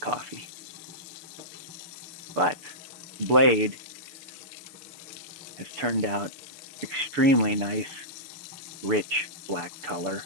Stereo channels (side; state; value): left; late; 6.8 ms